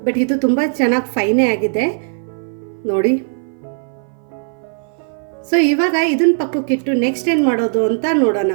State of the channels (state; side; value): silent; left; 58 dB below the other